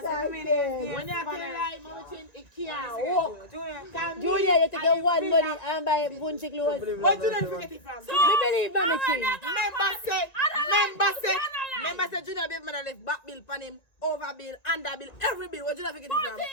tell me like, Mama Chin, it can't walk. Junior, you take your one money and buy Punsie clothes. What Junior forget it from? Me believe Mommy Chin. Member say Junior baby mother left back bill pan him, over bill, under bill, every bill. What Junior forget it from? Party,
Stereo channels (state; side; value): late; right; 1.9 ms